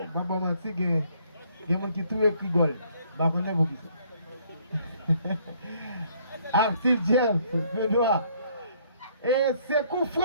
pas mentir, il y a des gens qui trouvent qui rigolent. Je ne sais pas pour qui c'est. Artil Jeff, Benoît. Et c'est coup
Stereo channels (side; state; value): both; inverted; correlation -0.64